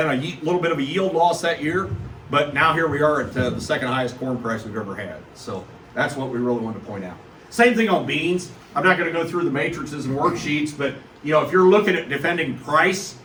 a little bit of a yield loss that year, but now here we are at the second highest corn price we've ever had. So that's what we really wanted to point out. Same thing on beans. I'm not going to go through the matrices and worksheets, but you know, if you're looking at defending price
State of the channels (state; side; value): identical; both; correlation 1.00